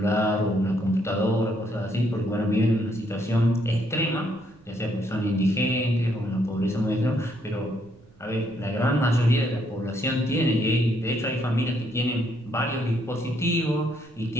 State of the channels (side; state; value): right; noise; rumble, 28 dB below the sound